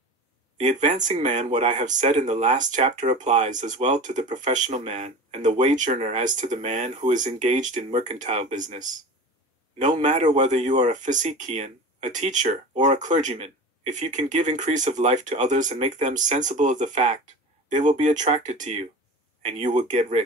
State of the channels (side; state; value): both; normal; correlation 0.33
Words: The advancing man. What I have said in the last chapter applies as well to the professional man and the wage earner as to the man who is engaged in mercantile business. No matter whether you are a physician, a teacher, or a clergyman, if you can give increase of life to others and make them sensible of the fact, they will be attracted to you, and you will get